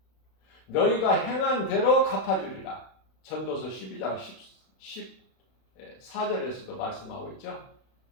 너희가 행한 대로 갚아주리라. 전도서 12장 14절에서도 말씀하고 있죠.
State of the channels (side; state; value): right; late; 32 ms